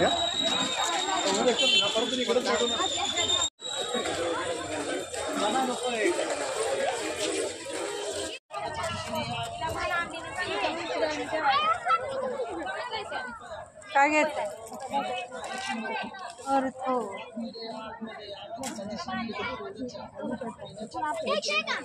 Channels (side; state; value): both; identical; correlation 1.00